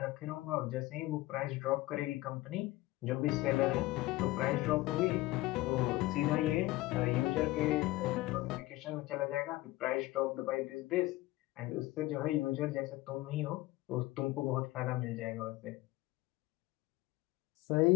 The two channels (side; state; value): right; quieter; 18.7 dB